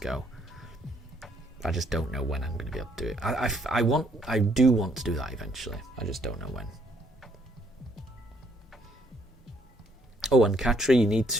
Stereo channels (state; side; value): normal; both; correlation 0.68